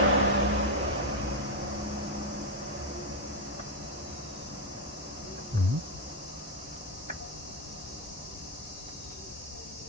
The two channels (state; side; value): normal; both; correlation 0.04